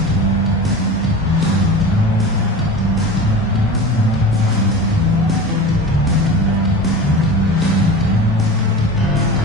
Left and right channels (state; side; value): normal; both; correlation 0.32